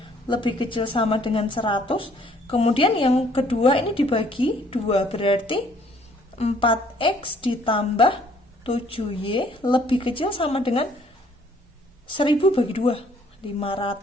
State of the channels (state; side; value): normal; both; correlation 0.62